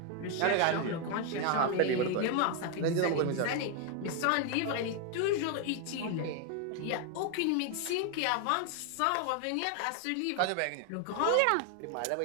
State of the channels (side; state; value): both; different; correlation 0.01